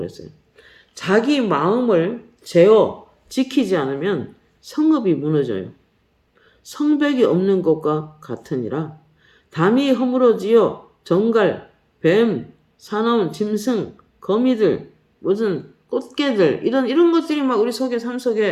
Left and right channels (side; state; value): both; identical; correlation 1.00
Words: 자기 마음을 제어 지키지 않으면 성읍이 무너져요. 성벽이 없는 것과 같으니라. 담이 허물어지어 정갈, 뱀, 사나운 짐승, 거미들, 무슨 꽃게들 이런 것들이 막 우리 속에 삶